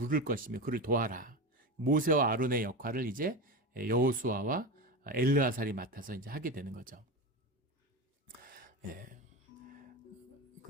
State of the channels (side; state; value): both; normal; correlation 0.22